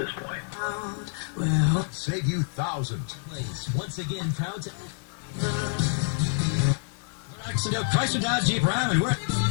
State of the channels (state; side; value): silent; right; 60 dB below the other